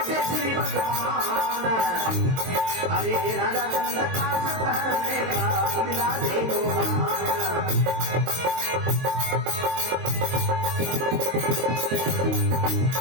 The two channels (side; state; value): left; late; 22 ms